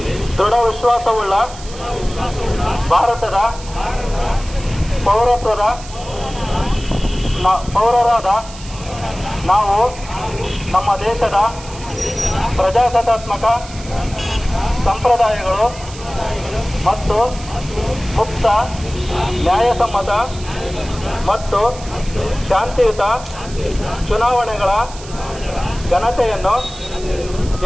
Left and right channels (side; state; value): right; noise; hiss, 16 dB below the sound